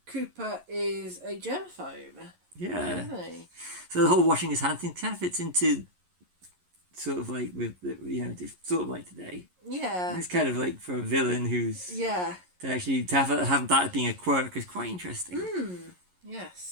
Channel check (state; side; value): late; left; 11 ms